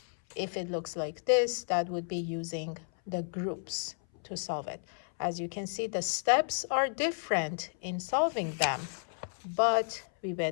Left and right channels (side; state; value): right; silent; 56 dB below the other